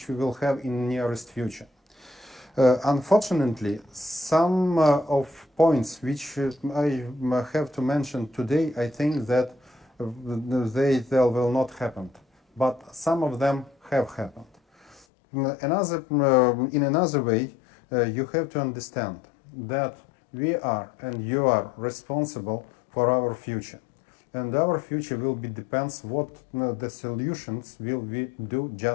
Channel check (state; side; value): drops out; right; at 15.1 s